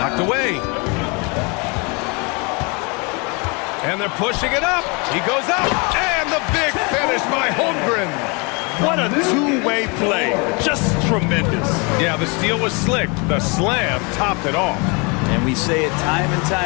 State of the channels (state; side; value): quieter; right; 30.7 dB